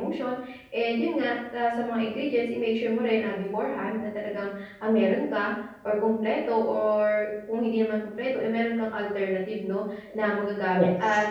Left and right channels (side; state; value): both; identical; correlation 1.00